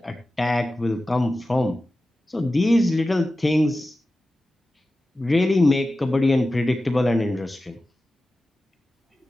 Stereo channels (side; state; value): both; normal; correlation 0.94